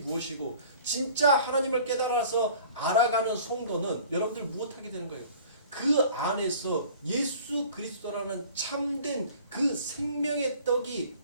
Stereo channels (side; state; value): both; inverted; correlation -0.48